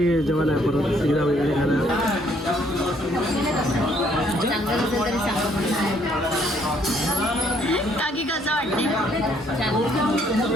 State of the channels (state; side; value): normal; both; correlation 0.66